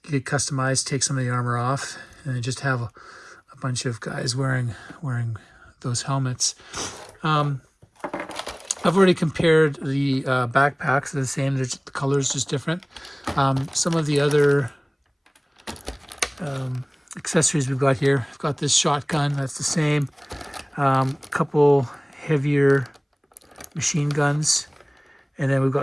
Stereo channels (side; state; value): both; identical; correlation 1.00